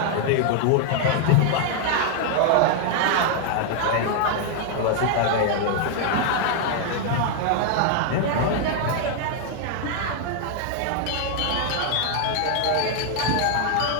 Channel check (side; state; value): both; different; correlation 0.00